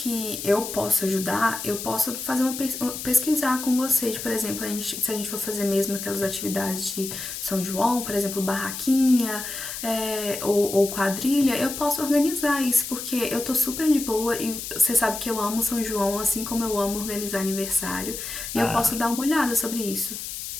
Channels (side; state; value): left; noise; hiss, 7 dB below the sound